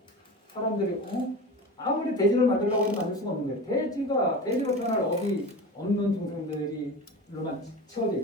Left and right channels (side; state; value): both; normal; correlation 0.31